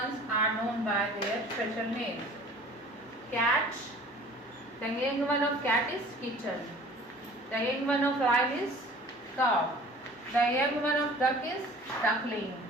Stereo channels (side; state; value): both; normal; correlation 0.47